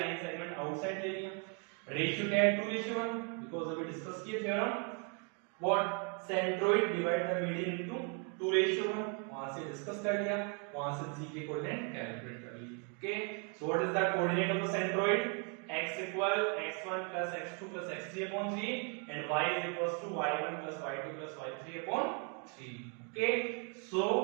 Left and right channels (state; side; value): quieter; left; 38.3 dB